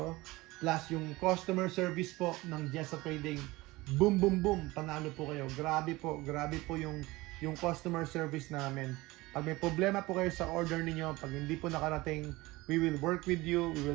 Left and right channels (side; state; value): left; quieter; 20.6 dB